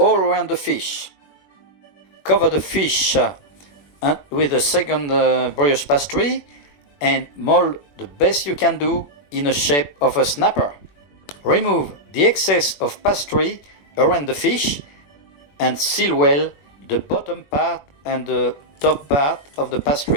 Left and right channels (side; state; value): right; late; 21 ms